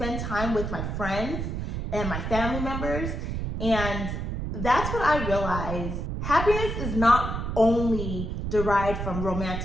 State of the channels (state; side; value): noise; right; rumble, 3 dB below the sound